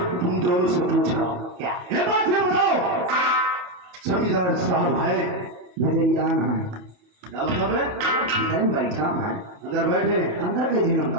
तुम दोनों से पूछ रहा हूँ, क्या ये बात ये बताओ, जमींदार साहब है नजरियान है? क्या मतलब है? इधर बैठा है, अंदर बैठे हैं, अंदर के दिनों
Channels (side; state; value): left; late; 27 ms